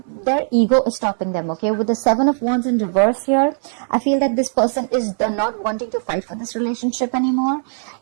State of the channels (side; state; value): left; silent; digital silence